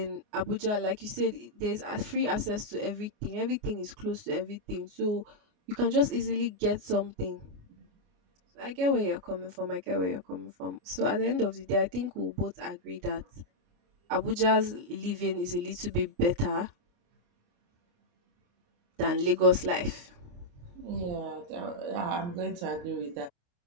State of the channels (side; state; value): left; late; 29 ms